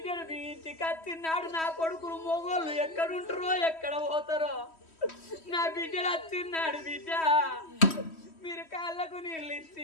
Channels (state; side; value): late; right; 3.1 ms